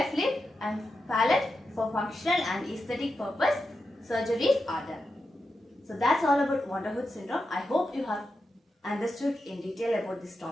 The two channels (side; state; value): both; normal; correlation 0.89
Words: lip and palate for functional and aesthetic purpose surgeries are done. So that's all about Woude syndrome. I hope you have understood in detail about this